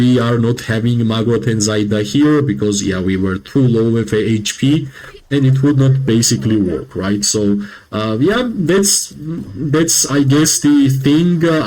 are not having Magrot and Zaida here, because yeah, we were too low with HP and it would not basically work, right? So yeah, that's I guess the thing.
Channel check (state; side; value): identical; both; correlation 1.00